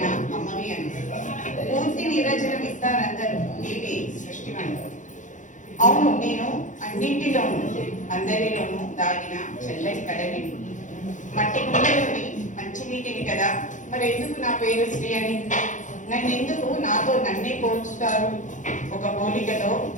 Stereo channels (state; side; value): late; right; 0.36 ms